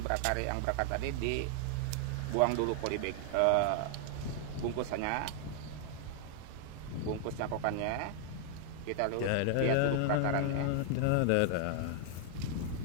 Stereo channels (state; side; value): different; both; correlation 0.00